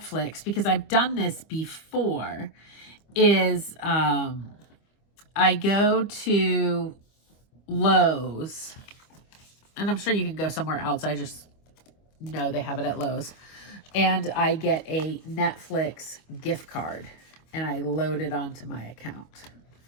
because I've done this before, is I go to Lowe's, and I'm sure you can go somewhere else. I just know they have it at Lowe's. And I get a Netflix gift card, and I load it onto my account.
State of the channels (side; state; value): right; late; 25 ms